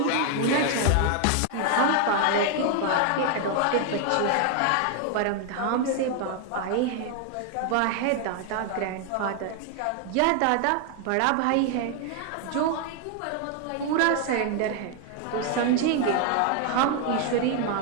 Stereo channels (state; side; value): different; both; correlation 0.01